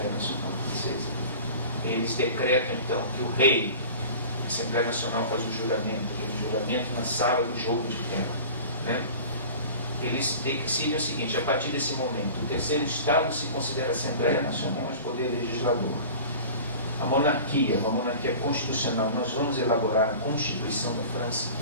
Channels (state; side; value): inverted; both; correlation -0.39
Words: Nacional Francesa, eles decretam então que o rei, a Assembleia Nacional faz o juramento, aquele juramento na sala do jogo de terra, né? Eles decidem o seguinte: a partir desse momento, o terceiro Estado se considera a Assembleia Nacional, mas poder legislador. A monarquia, uma monarquia constitucional, nós vamos elaborar a Constituição da França.